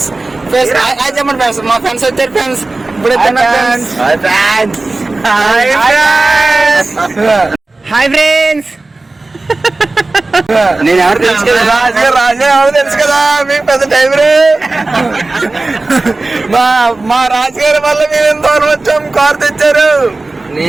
చెప్పండి ఫ్రెండ్స్, మా ఫ్రెండ్స్ వచ్చారు ఫ్రెండ్స్. ఇప్పుడు హాయ్ ఫ్రెండ్స్. నేను ఎవరు తెలుసు కదా, రాజు ఎవరు తెలుసు కదా, మీకు పెద్ద టైం రే. మా రాజుగారి వల్ల మేము ఎంత దూరం వచ్చాం, కార్ తెచ్చారు.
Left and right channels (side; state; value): left; quieter; 3.2 dB